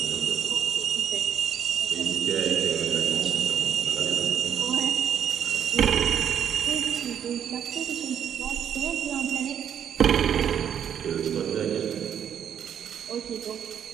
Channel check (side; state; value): left; quieter; 8.9 dB